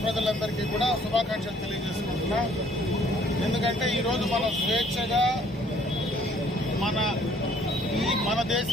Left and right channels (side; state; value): both; normal; correlation 0.60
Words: ప్రజలందరికీ కూడా శుభాకాంక్షలు తెలియజేసుకుంటున్నాం. ఎందుకంటే ఈరోజు మనం స్వేచ్ఛగా మన